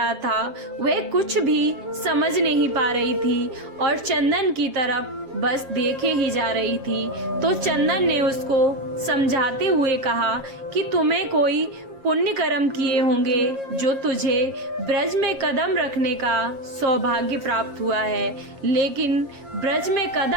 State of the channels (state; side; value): late; left; 7.4 ms